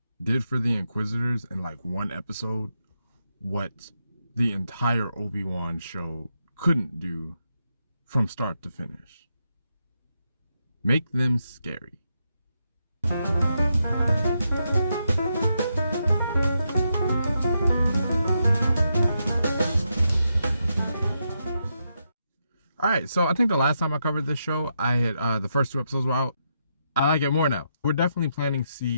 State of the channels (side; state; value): both; inverted; correlation -0.82